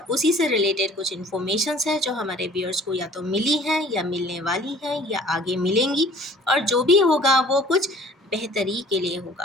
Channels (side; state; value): both; normal; correlation 0.51